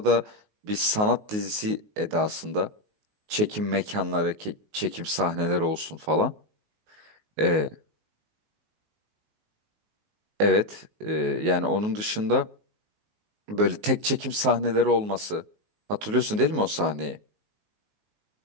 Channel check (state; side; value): late; left; 19 ms